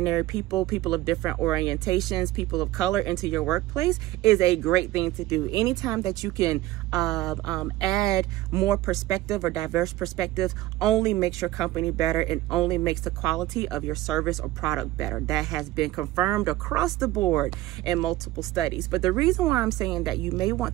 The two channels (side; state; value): left; quieter; 16.3 dB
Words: people, people of different orientations, people of color into your workplace is a great thing to do. Anytime that you can add more perspective or diverse perspectives only makes your company better and only makes the quality of your service or product better. That has been confirmed across the board in multiple studies. But the reason why I'm saying that you may want